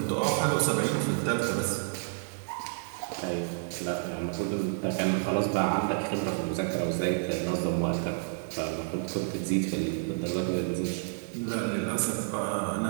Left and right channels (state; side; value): silent; left; digital silence